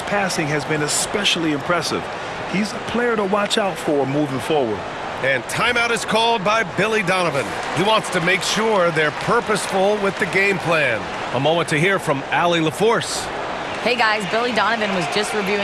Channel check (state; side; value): identical; both; correlation 1.00